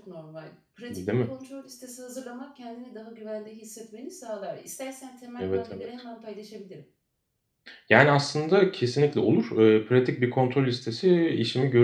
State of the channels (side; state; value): both; identical; correlation 1.00